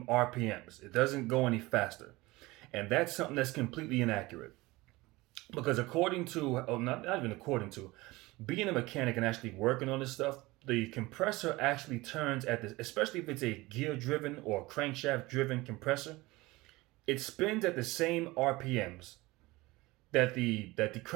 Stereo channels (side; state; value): left; quieter; 21.0 dB